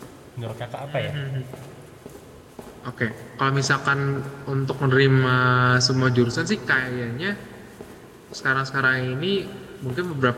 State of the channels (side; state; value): both; identical; correlation 1.00